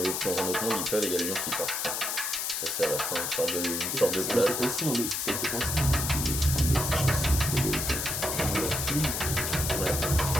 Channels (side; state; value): left; noise; hiss, 1 dB below the sound